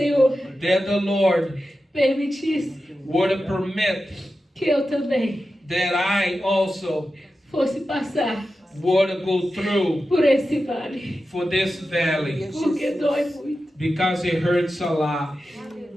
that the Lord permitisse would permit que eu também that I also fosse passar would go through por esse vale, for this valley, porque dói muito. because it hurts a lot.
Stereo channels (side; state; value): both; normal; correlation 0.92